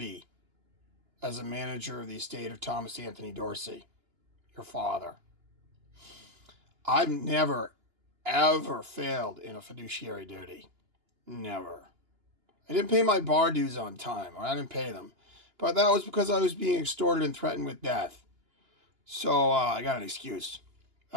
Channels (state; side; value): late; left; 2.9 ms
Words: as a manager of the estate of Thomas Anthony Dorsey, your father. I've never, ever failed in a fiduciary duty. Never. I didn't pay my bar dues on time, or I didn't pay them. But that was because I was being extorted and threatened with death. So I got an excuse.